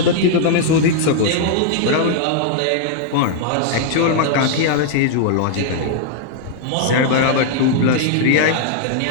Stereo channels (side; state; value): both; different; correlation -0.01